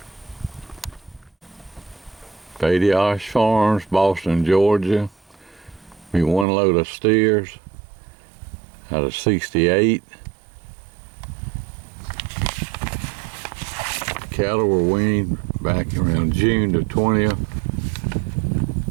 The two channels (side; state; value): left; drops out; at 6.5 s